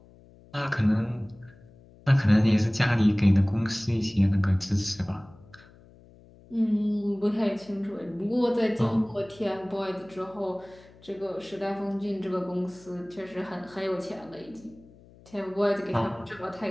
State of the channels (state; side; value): noise; left; hum, 25 dB below the sound